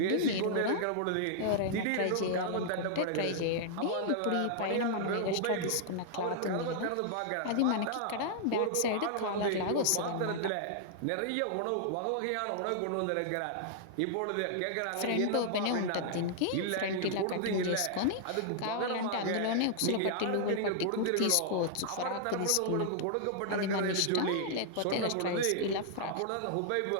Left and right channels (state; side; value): different; both; correlation -0.01